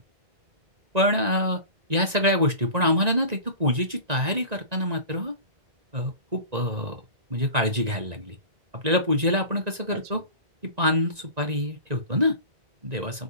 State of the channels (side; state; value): left; late; 1.9 ms